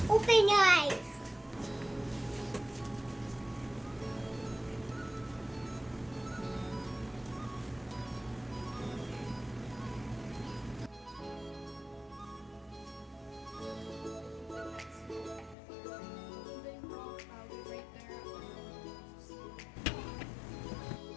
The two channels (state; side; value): drops out; right; at 15.6 s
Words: Open your eyes.